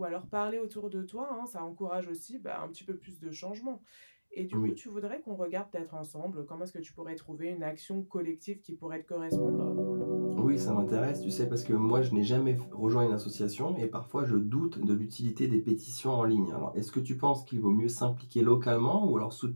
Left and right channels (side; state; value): both; inverted; correlation -1.00